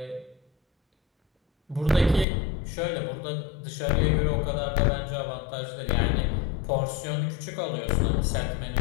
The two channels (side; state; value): right; drops out; at 2.2 s